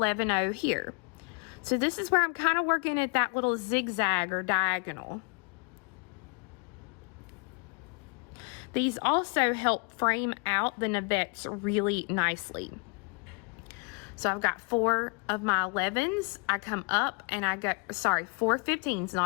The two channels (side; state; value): right; quieter; 32.8 dB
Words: here. So this is where I'm kind of working at that little zigzag or diagonal. These also help frame out the navettes really nicely. So I've got 4 of my 11s. I come up and I go, sorry, 4 15s,